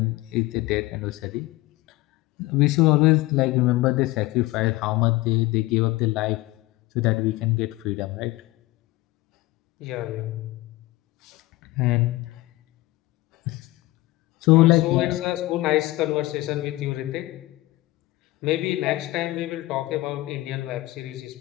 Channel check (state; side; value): quieter; right; 18.9 dB